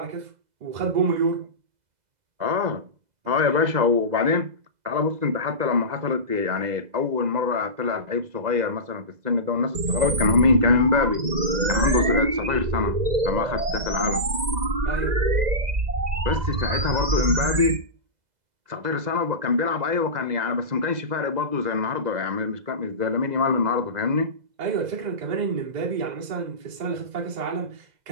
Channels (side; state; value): left; late; 2.0 ms